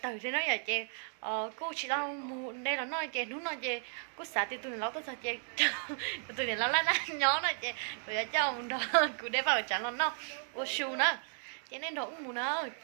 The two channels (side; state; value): left; silent; 55 dB below the other